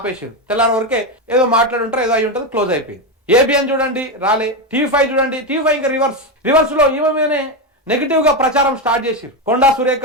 తెల్లారి వరకే ఏదో మాట్లాడుంటారు, ఏదో అయి ఉంటుంది, క్లోజ్ అయిపోయింది. ఏబిఎన్ చూడండి రాలే. టీవీ5 చూడండి, టీవీ5 ఇంకా రివర్స్ లో ఈమె మీదనే నెగిటివ్ గా ప్రచారం స్టార్ట్ చేసిరు. కొండా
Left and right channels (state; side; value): normal; both; correlation 0.11